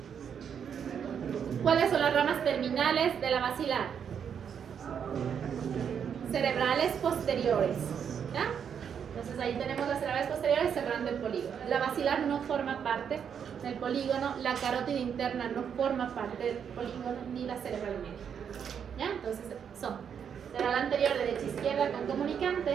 ¿Cuáles son las ramas terminales de la basilar? Cerebrales posteriores, ¿ya? Entonces ahí tenemos las cerebrales posteriores cerrando el polígono. La basilar no forma parte del polígono, la carótida interna no forma parte del polígono, ni la cerebral media, ¿ya? Entonces son cerebral anterior derecha-izquierda con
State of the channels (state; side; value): quieter; left; 7.7 dB